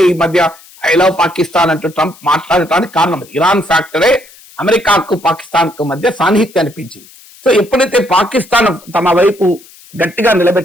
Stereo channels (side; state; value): left; noise; hiss, 24 dB below the sound